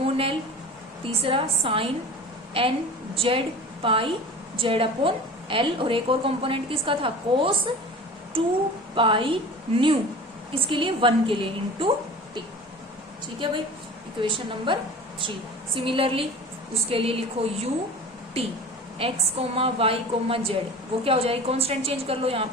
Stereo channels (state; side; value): normal; both; correlation 0.38